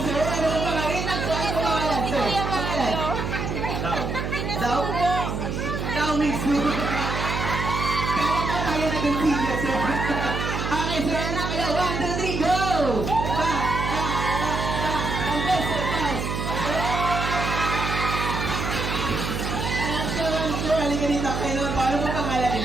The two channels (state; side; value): noise; right; hum, 3 dB below the sound